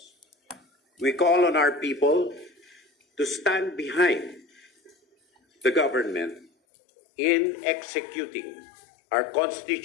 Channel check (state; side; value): drops out; right; at 6.5 s